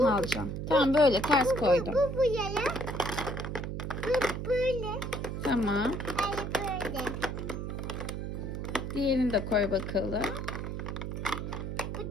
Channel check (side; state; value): right; noise; hum, 4 dB below the sound